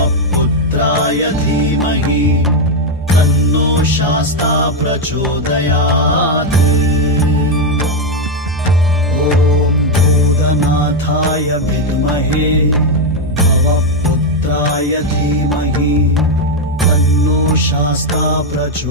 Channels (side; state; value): both; normal; correlation 0.04